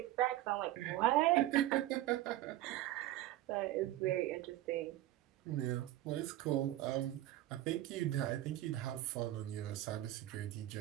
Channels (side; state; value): left; quieter; 15.0 dB